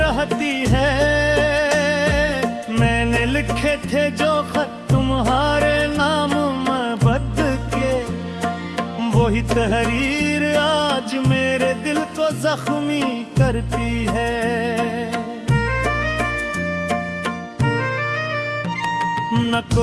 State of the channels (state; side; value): identical; both; correlation 1.00